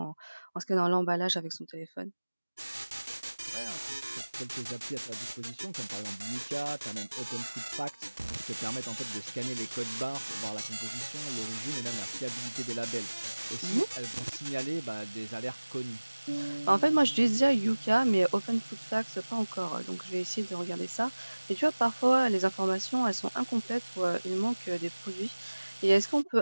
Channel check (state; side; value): inverted; both; correlation -1.00